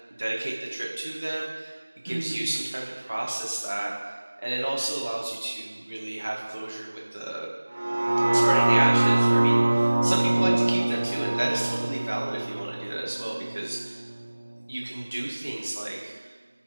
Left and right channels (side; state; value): both; inverted; correlation -1.00